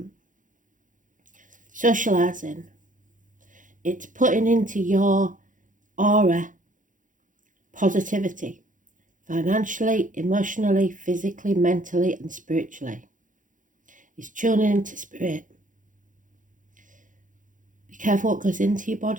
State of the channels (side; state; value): left; late; 0.38 ms